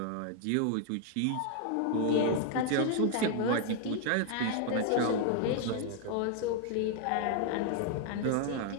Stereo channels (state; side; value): different; both; correlation 0.00